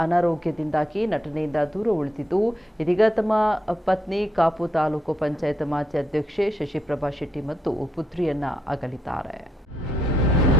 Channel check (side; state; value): both; normal; correlation 0.79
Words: ಅನಾರೋಗ್ಯದಿಂದಾಗಿ ನಟನೆಯಿಂದ ದೂರ ಉಳಿದಿದ್ದು, ಇದೀಗ ತಮ್ಮ ಪತ್ನಿ ಕಾಪು ತಾಲೂಕು ಪಂಚಾಯತ್ ಮಾಜಿ ಅಧ್ಯಕ್ಷೆ ಶಶಿಪ್ರಭಾ ಶೆಟ್ಟಿ ಮತ್ತು ಪುತ್ರಿಯನ್ನ ಅಗಲಿದ್ದಾರೆ.